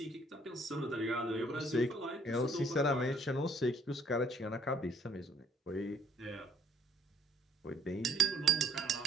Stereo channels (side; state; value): both; normal; correlation 0.61